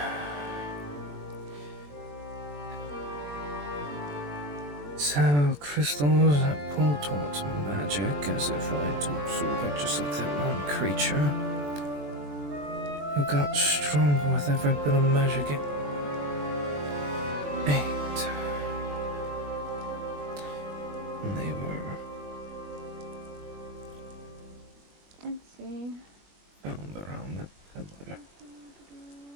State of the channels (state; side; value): late; left; 21 ms